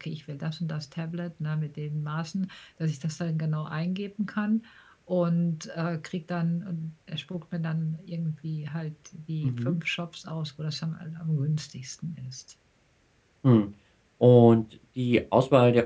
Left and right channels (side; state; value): both; identical; correlation 1.00